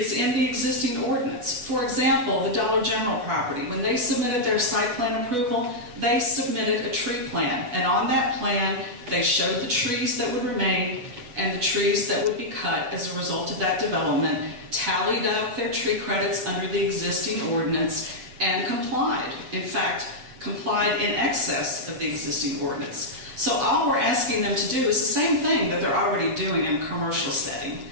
in the existing ordinance. For example, the Dollar General property, when they submitted their site plan approval, they submitted a tree plan, and on that plan, they showed the trees that would remain and the trees that would be cut as a result of that development, tallied up their tree credits under the existing ordinance, and complied. In fact, complied in excess of the existing ordinance. So all we're asking them to do is the same thing that they're already doing in a commercial setting,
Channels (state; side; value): late; left; 8.2 ms